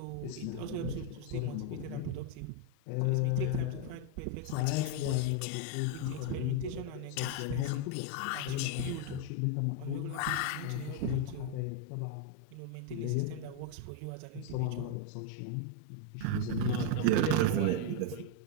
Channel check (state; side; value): different; both; correlation 0.01